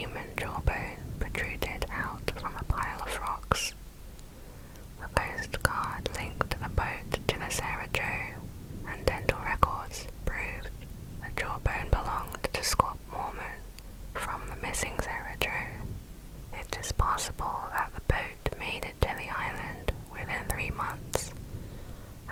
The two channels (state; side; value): identical; both; correlation 1.00